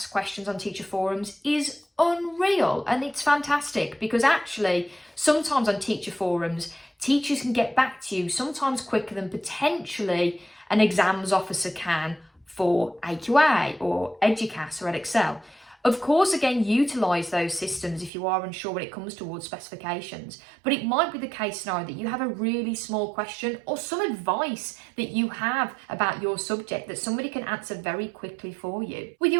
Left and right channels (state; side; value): drops out; left; at 18.1 s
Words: questions on teacher forums is unreal, and it's fantastic because actually sometimes on teacher forums teachers can get back to you sometimes quicker than potentially an exams officer can for AQA or EDUCAS or EdExcel. Of course, again, utilise those systems if you are unsure when it comes towards specifications, but it might be the case scenario that you have a really small question or some advice that you have about your subject that somebody can answer very quickly for you. With